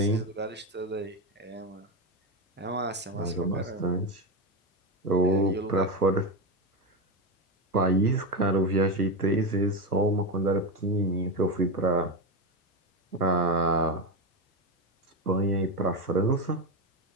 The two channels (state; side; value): normal; both; correlation 0.13